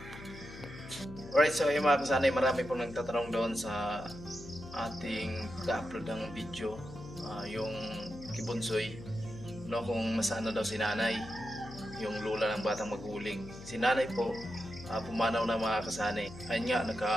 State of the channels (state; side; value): noise; left; hum, 14 dB below the sound